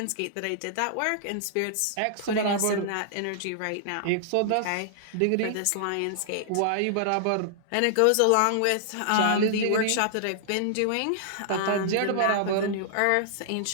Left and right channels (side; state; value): both; different; correlation -0.01